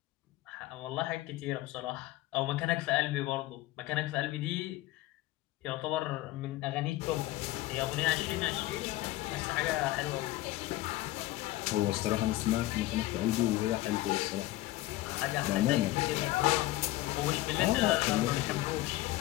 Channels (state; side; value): quieter; right; 17.1 dB